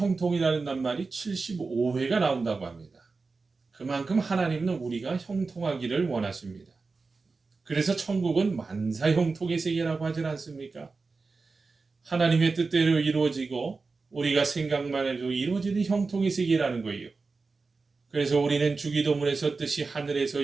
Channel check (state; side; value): quieter; left; 4.1 dB